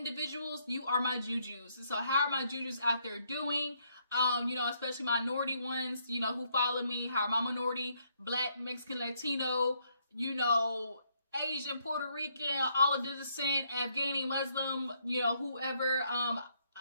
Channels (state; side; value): inverted; both; correlation -0.72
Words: you are my jujus. So how are my jujus out there doing? You know, especially minority ones, you know, who follow me. How are my minority, Black, Mexican, Latino, you know, Asian, Puerto Rican, all of the descent, Afghani, Muslim, you know, whoever,